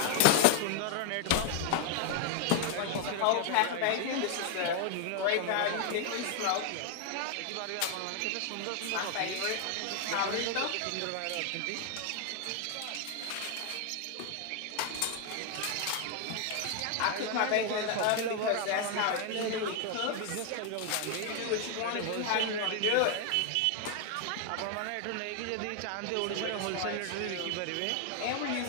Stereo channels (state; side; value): different; both; correlation 0.00